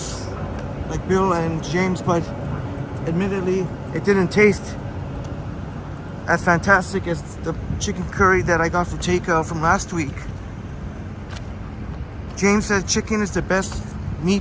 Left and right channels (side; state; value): both; identical; correlation 1.00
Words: like Bill and James, but admittedly, it didn't taste as fantastic as the chicken curry that I got for takeout from last week. James said chicken is the best